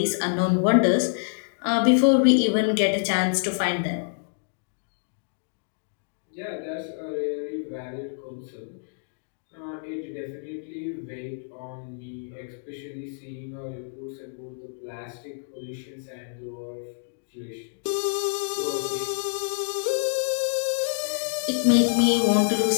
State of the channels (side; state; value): right; silent; digital silence